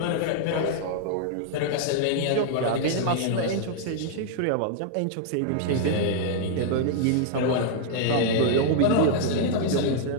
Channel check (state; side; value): different; both; correlation -0.01